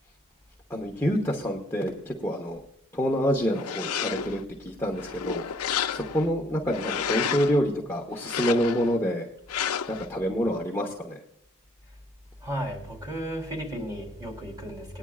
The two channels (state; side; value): normal; both; correlation 0.63